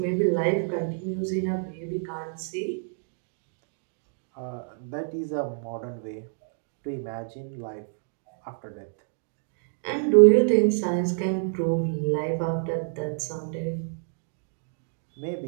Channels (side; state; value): left; silent; 59 dB below the other